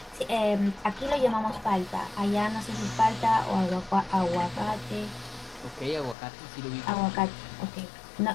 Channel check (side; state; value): right; drops out; at 6.2 s